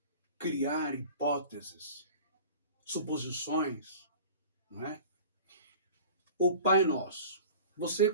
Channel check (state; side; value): inverted; both; correlation -0.41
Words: criar hipóteses, suposições, não é? O Pai Nosso. Você